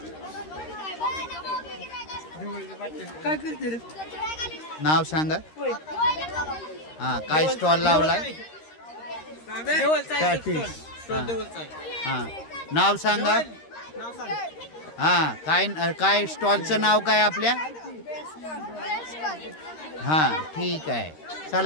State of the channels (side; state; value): right; late; 13 ms